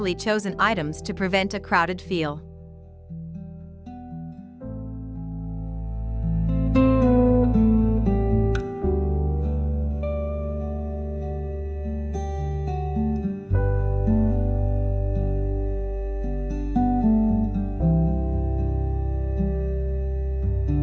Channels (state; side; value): identical; both; correlation 1.00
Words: chosen items to prevent a crowded feel.